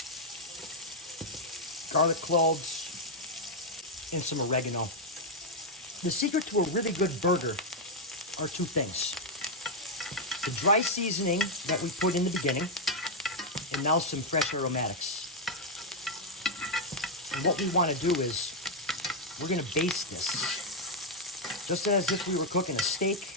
garlic cloves, and some oregano. The secret to a really good burger are 2 things. The dry seasoning that we put in the beginning, and now some fresh aromatics. And what we want to do is we're going to baste this just as if we were cooking a steak,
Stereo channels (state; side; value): normal; both; correlation 0.00